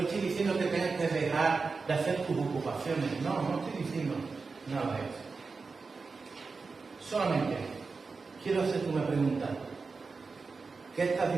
estoy diciendo que tengas que dejar de hacer tus ocupaciones, no estoy diciendo nada de eso. Solamente quiero hacerte una pregunta. ¿Qué estás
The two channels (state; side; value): quieter; left; 4.4 dB